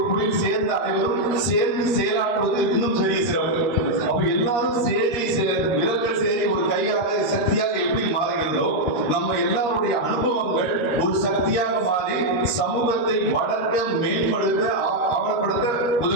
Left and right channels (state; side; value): late; right; 13 ms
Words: குழியில் சேர்ந்த அனைவரும் சேர்ந்து செயலாற்றுவது இன்னும் பெரிய சிறப்பு. அப்ப எல்லாரும் விரல்கள் சேரி ஒரு கையாக சக்தியாக எப்படி மாறுகிறதோ, நம்ம எல்லாருடைய அனுபவங்கள் ஒரு சக்தியாக மாறி சமூகத்தை வளர்க்க, மேம்படுத்த, ஆவணப்படுத்த